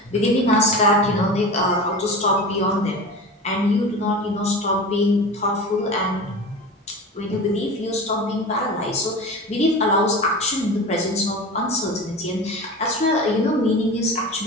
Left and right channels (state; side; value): normal; both; correlation 0.31